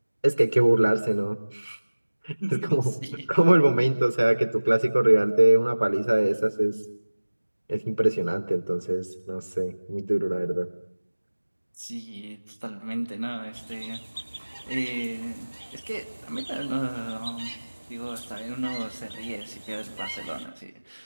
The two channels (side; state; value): both; inverted; correlation -1.00